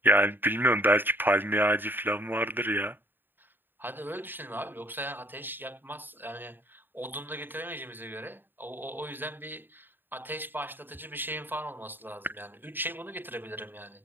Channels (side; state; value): left; late; 0.094 ms